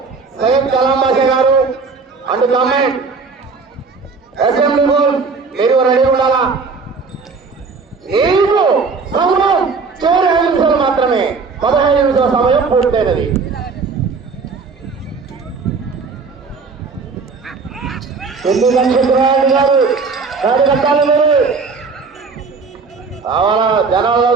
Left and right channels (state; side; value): quieter; left; 4.7 dB